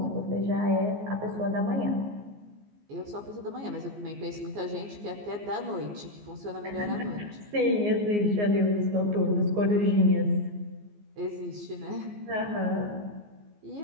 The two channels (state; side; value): late; left; 14 ms